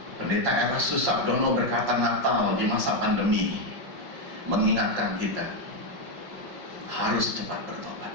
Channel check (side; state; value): left; late; 5.4 ms